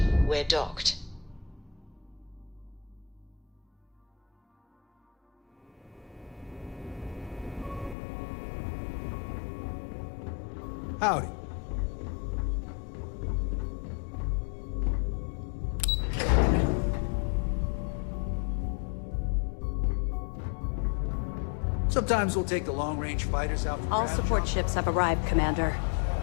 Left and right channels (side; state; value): right; drops out; at 8.0 s